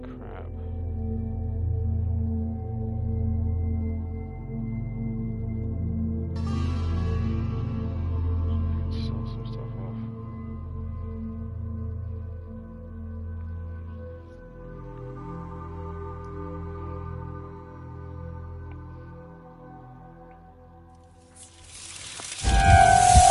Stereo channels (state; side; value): identical; both; correlation 1.00